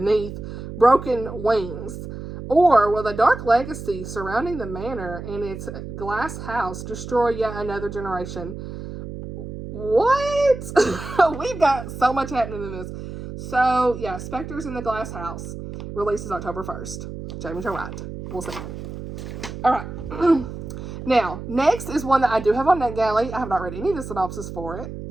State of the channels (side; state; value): right; noise; hum, 9 dB below the sound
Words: broken wings? Or will the dark legacy surrounding the manor and its glass house destroy yet another generation? What? We've got so much happening in this. So, yeah, Specters in the Glass House releases October 1st. Jaime Jo Wright. We'll see. All right. Now, next is one that I do have on NetGalley. I have not read any of the synopsis for it